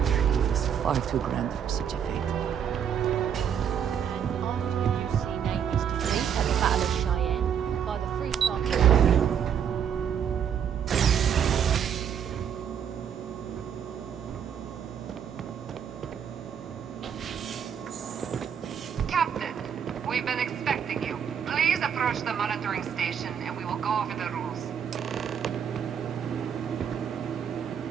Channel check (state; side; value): quieter; left; 8.3 dB